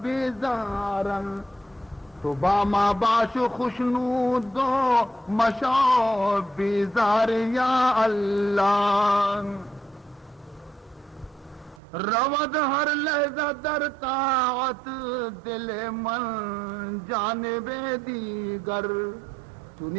بیزارن تو باما باش خوشنود دو مشاو بیزار یا اللہ رود ہر لحظہ در طاعت دل من جانب دیگر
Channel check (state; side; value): drops out; left; at 11.8 s